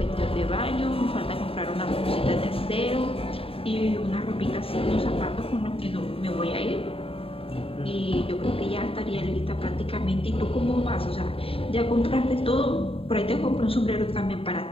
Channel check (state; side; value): late; right; 0.27 ms